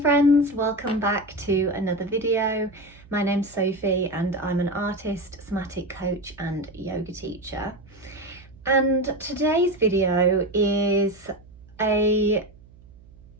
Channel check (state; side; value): noise; right; hum, 24 dB below the sound